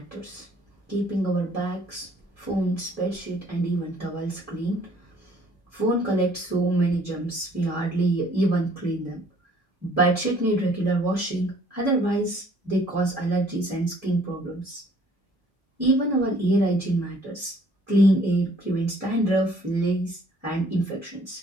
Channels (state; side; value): normal; both; correlation 0.59